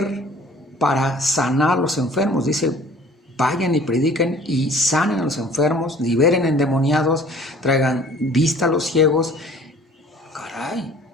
para sanar a los enfermos. Dice, vayan y prediquen y sanen a los enfermos, liberen endemoniados, traigan vista a los ciegos. Caray,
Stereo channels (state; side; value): normal; both; correlation 0.51